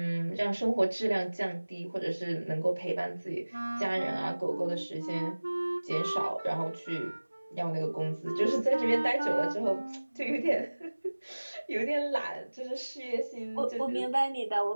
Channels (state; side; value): inverted; both; correlation -1.00